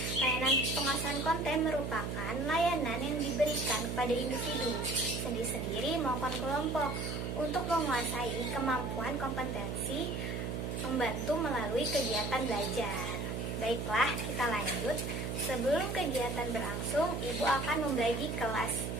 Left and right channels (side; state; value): right; noise; hum, 3 dB below the sound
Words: Layanan penguasaan konten merupakan layanan yang diberikan kepada individu sendiri-sendiri maupun kelompok untuk menguasai kemampuan kompetensi membantu melalui kegiatan belajar. Baiklah, kita lanjut. Sebelum kegiatan berlangsung, Ibu akan membagi kelas